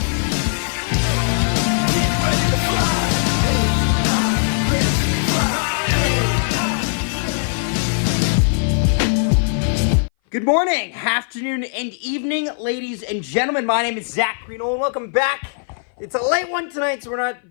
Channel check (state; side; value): silent; right; 60 dB below the other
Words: Get ready to fly! Good morning, afternoon, and evening, ladies and gentlemen. My name is Zach Greenol, and welcome back. It's a late one tonight, so we're not